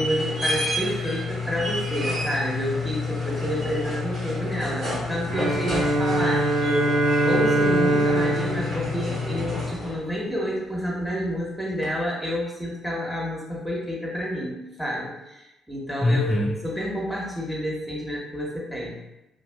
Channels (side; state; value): both; normal; correlation 0.74